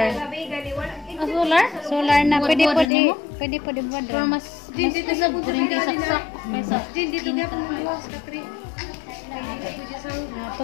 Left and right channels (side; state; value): right; drops out; at 2.9 s